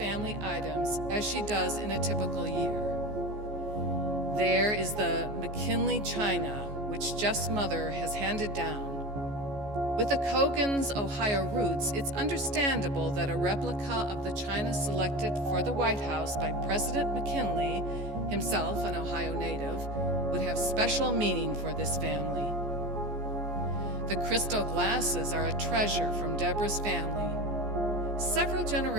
items as she does in a typical year. There is the McKinley china, which Jeff's mother has handed down. With the Cogans' Ohio roots, it's understandable that a replica of the china selected for the White House by President McKinley, himself an Ohio native, would have special meaning for this family. The crystal glasses are a treasure from Deborah's family. Several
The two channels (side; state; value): left; late; 14 ms